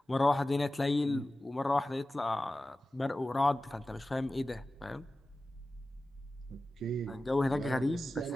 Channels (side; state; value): both; normal; correlation 0.95